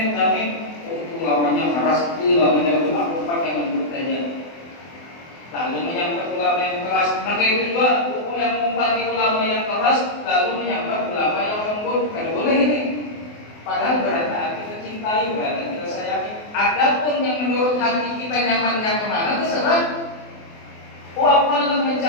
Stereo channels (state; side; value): late; right; 24 ms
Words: tapi itu lamanya keras, itu lamanya aku pakai yang lembut saja. Lalu menyambat ulama yang keras. Nah kayak itu juga yang mengumpati ulama yang keras, lalu menyambat ulama yang lembut. Kada boleh ini. Padahal berada kita cintai, berada kita sayangi. Adapun yang menurut hati kita nyamannya kemana, terserah. Aku akan